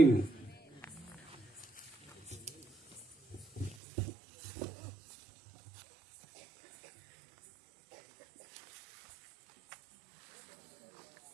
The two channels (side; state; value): left; drops out; at 3.8 s